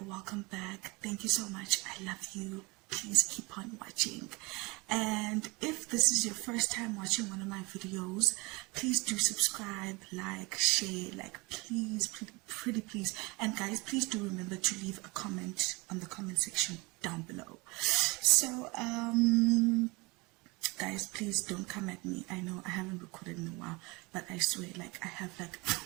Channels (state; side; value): quieter; left; 25.8 dB